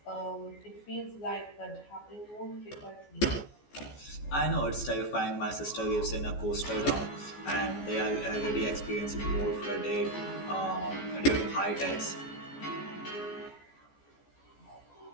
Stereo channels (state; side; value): late; right; 14 ms